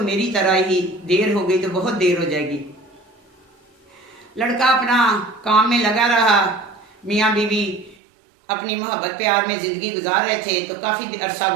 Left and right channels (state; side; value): drops out; left; at 8.0 s